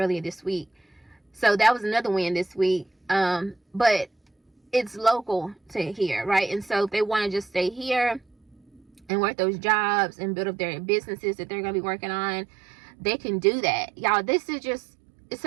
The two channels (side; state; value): left; drops out; at 9.1 s